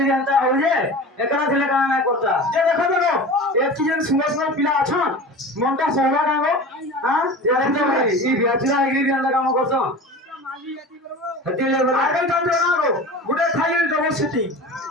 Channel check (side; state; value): both; normal; correlation 0.34